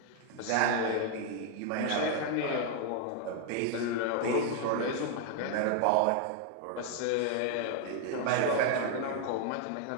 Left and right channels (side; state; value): both; different; correlation 0.00